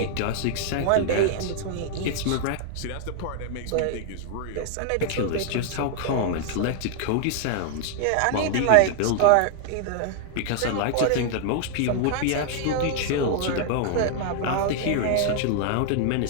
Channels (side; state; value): both; different; correlation 0.00